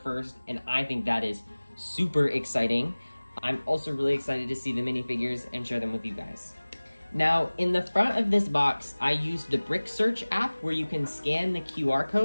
and I think that is super exciting. I'm also really excited to see the minifigures and share them with you guys. Now, in the front of this box, I used the Brick Search app where you can scan the QR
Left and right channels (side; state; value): both; inverted; correlation -1.00